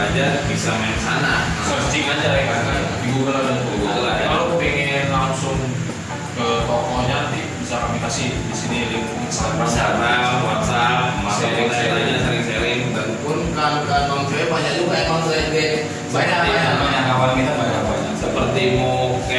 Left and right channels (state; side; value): identical; both; correlation 1.00